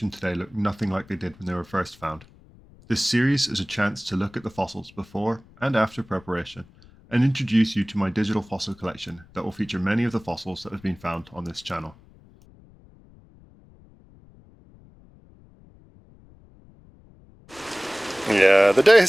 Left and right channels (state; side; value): noise; left; rumble, 25 dB below the sound